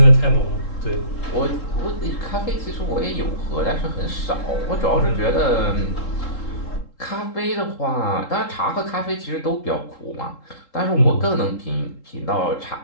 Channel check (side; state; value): right; late; 3.8 ms